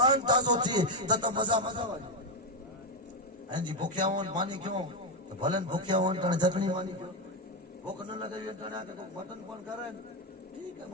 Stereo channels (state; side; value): normal; both; correlation 0.06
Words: تازو تھی تو مزا والی ہیں جی بھوکیا ہون مانی کیوں تو بھلن بھوکیا ہون تن چٹنی مانی کیوں بھوک نہ لگے تن آ کے مٹن پن کرے ٹھیک ہے